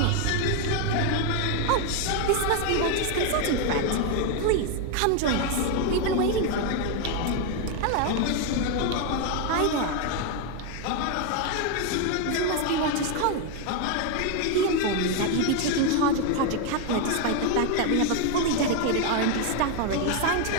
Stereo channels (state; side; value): different; both; correlation 0.01